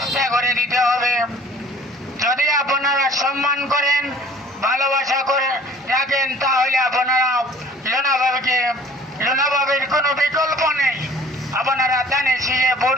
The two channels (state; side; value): normal; both; correlation 0.51